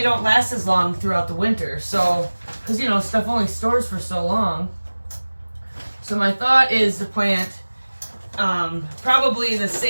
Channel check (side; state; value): both; inverted; correlation -1.00